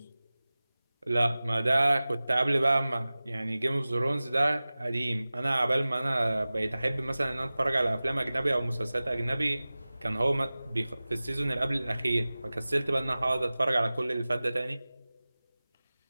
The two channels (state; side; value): inverted; both; correlation -0.97